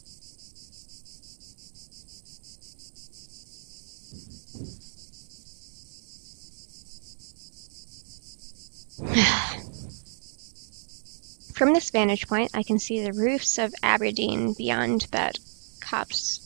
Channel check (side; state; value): left; silent; digital silence